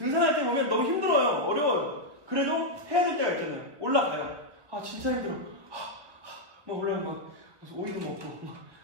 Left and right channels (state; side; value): late; left; 1.2 ms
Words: 때 보면 너무 힘들어요. 어려워요. 그래도 해야 될 때가 있잖아요. 올라가요. 진짜 힘들어. 오이도 먹고